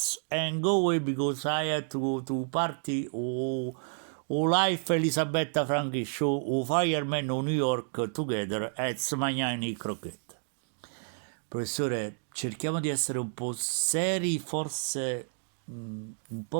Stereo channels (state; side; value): silent; left; digital silence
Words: and go away because I had to party life Elisabetta Franchi show Fireman o New York together at Smagnani Croquette. Professore, cerchiamo di essere un po' seri, forse un